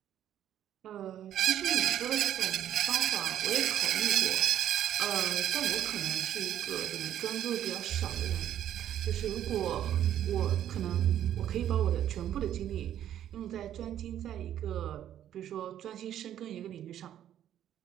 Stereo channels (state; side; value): quieter; left; 11.0 dB